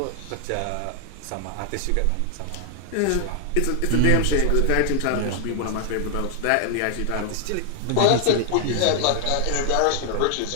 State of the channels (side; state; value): both; different; correlation 0.00